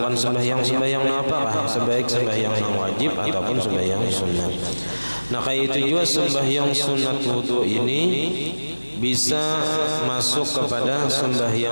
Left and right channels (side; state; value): both; inverted; correlation -1.00